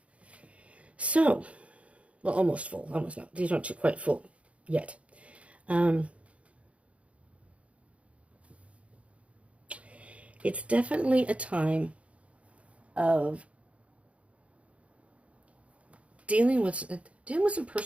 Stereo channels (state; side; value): late; left; 0.063 ms